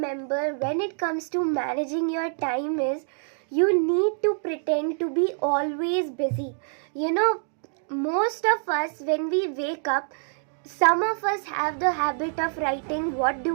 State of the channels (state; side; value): silent; left; digital silence